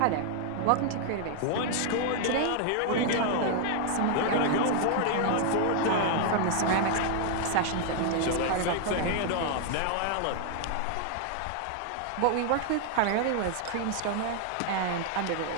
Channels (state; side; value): different; both; correlation 0.00